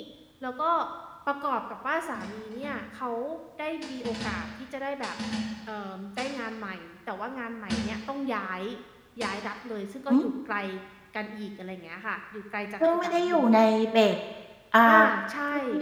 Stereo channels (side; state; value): both; identical; correlation 1.00